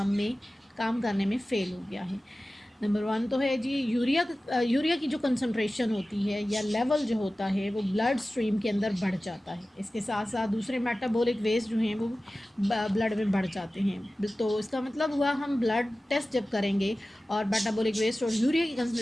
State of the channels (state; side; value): normal; both; correlation 0.96